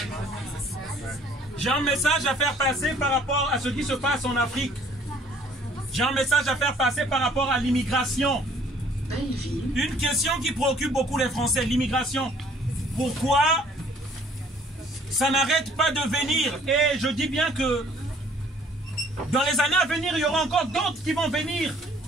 J'ai un message à faire passer par rapport à ce qui se passe en Afrique. J'ai un message à faire passer par rapport à l'immigration. Une question qui préoccupe beaucoup les Français, l'immigration. Pourquoi ça n'arrête pas de venir? Et je dis bien que dans les années à venir, il y aura encore d'autres qui vont venir,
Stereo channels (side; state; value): both; normal; correlation 0.58